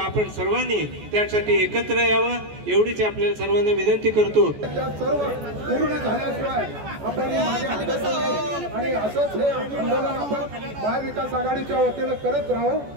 सर्वांनी त्यासाठी एकत्र यावं एवढीच आपल्याला सर्वांना विनंती करतो. पूर्ण झाल्याशिवाय आणि असंच हे आंदोलन आपण महाविकास आघाडीच्या वतीनं करत राहू.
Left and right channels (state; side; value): late; left; 14 ms